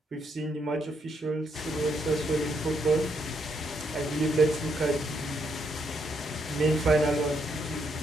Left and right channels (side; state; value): both; normal; correlation 0.76